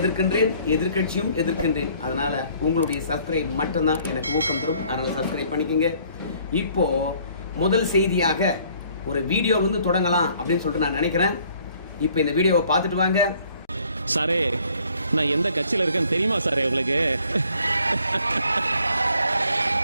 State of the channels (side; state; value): both; inverted; correlation -0.61